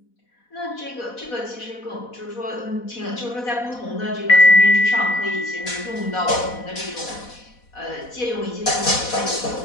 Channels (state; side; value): late; right; 4.1 ms